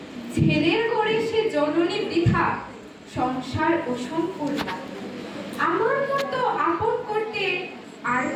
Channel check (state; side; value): identical; both; correlation 1.00